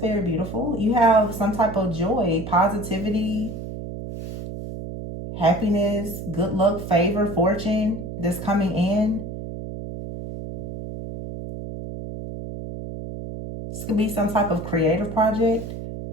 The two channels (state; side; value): noise; right; hum, 8 dB below the sound